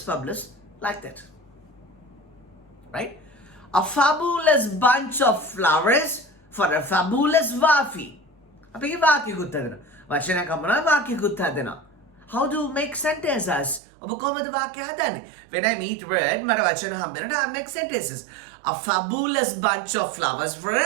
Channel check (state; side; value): drops out; left; at 13.8 s